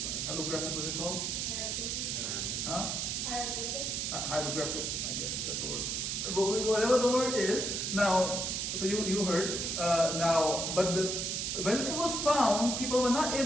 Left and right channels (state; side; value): noise; right; hiss, 1 dB below the sound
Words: what's it called? Hieroglyphics. Huh? Hieroglyphics, I guess, that's the word. But whatever the word is, now, so you heard, now, but when it was found, people were not